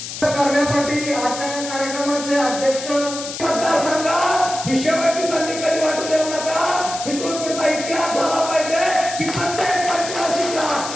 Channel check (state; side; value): noise; left; hiss, 8 dB below the sound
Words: करण्यासाठी आजच्या कार्यक्रमाचे अध्यक्ष मतदारसंघात ही शेवटची संधी कधी वाटू देऊ नका. इथून पुढचा इतिहास झाला पाहिजे की प्रत्येक पंचवार्षिकला